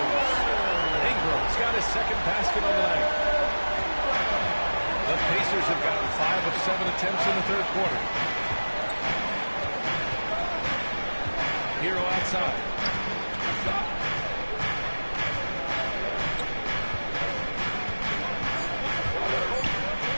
Ingram's got his 2nd basket on the night. The Pacers have gotten 5 of 7 attempts in the 3rd quarter. Hero outside.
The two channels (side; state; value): both; inverted; correlation -1.00